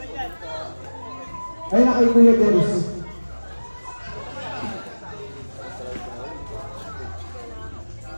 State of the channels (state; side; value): inverted; both; correlation -1.00